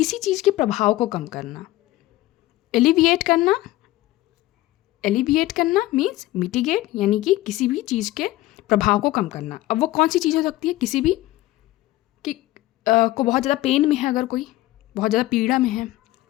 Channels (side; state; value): right; quieter; 17.2 dB